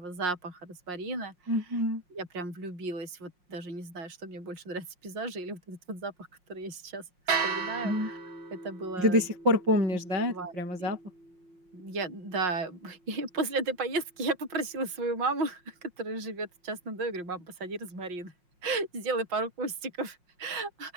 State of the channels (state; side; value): late; left; 5.6 ms